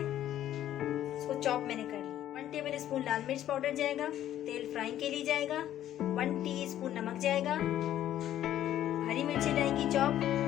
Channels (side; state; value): right; quieter; 12.0 dB